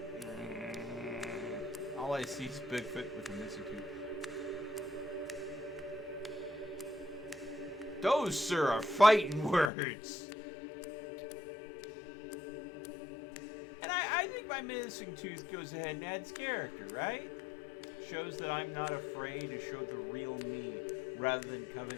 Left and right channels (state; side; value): drops out; right; at 9.7 s